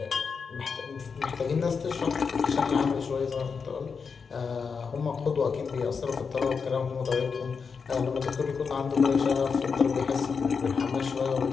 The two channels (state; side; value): quieter; right; 5.6 dB